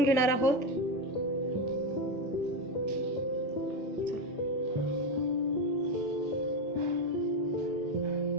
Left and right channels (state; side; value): normal; both; correlation 0.13